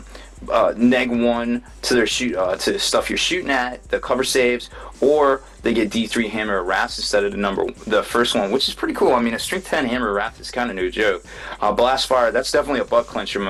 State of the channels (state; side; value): identical; both; correlation 1.00